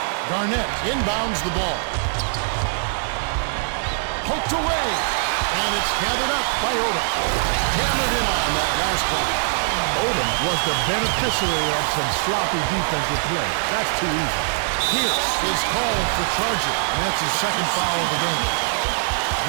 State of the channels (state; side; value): silent; left; digital silence